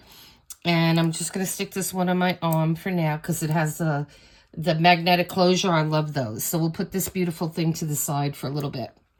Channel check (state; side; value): identical; both; correlation 1.00